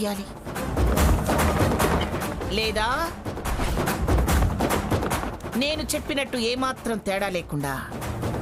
లేదా నేను చెప్పినట్టు ఏమాత్రం తేడా లేకుండా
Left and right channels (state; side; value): identical; both; correlation 1.00